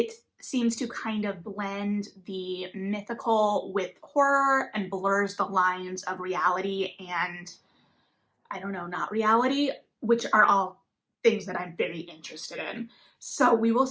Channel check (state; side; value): identical; both; correlation 1.00